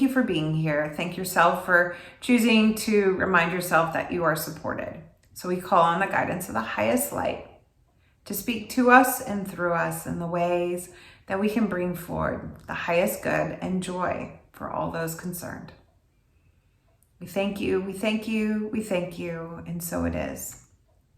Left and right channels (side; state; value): both; identical; correlation 1.00